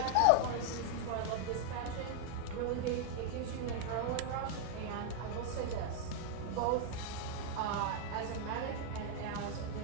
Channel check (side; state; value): both; different; correlation -0.01